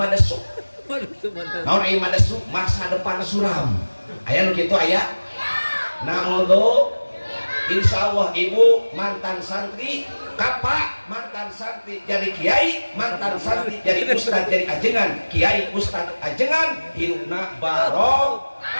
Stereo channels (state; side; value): inverted; both; correlation -1.00